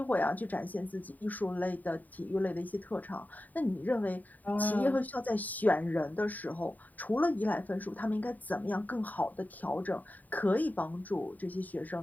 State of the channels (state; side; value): late; right; 0.081 ms